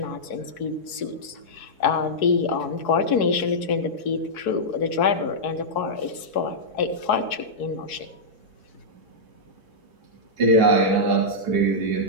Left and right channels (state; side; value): late; right; 4.7 ms